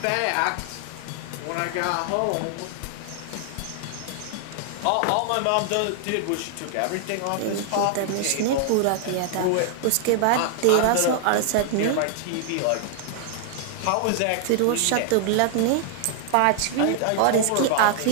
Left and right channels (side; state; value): both; different; correlation 0.00